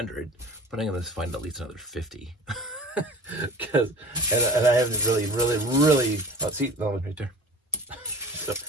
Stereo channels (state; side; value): normal; both; correlation 0.39